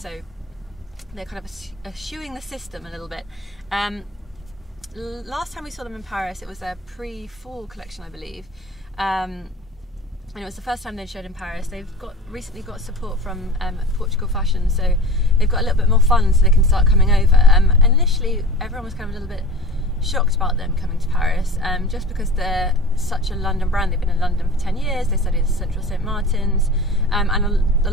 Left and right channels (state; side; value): normal; both; correlation 0.38